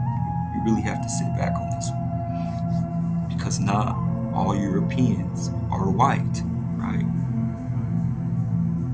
You really have to sit back on this one. Because not all Europeans are white, right?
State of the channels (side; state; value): both; identical; correlation 1.00